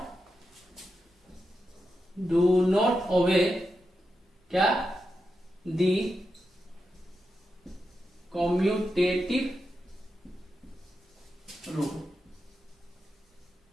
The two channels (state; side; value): normal; both; correlation 0.88